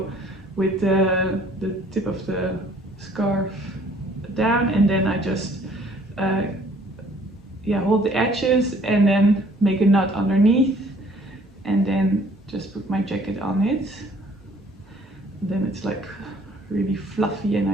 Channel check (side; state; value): both; normal; correlation 0.58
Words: with the tip of the scarf down, and then I just hold the edges and then make a knot underneath, and then just put my jacket on it. And then it's like really fluffy, and